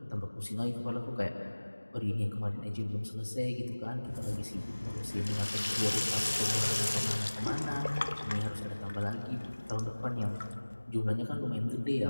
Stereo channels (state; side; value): inverted; both; correlation -1.00